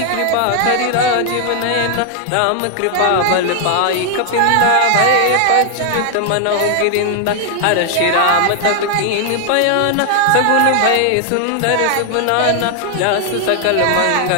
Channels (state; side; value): different; both; correlation 0.00